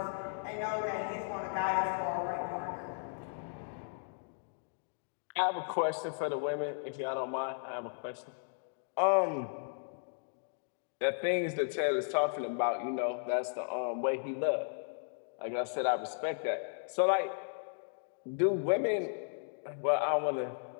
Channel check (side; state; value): right; silent; digital silence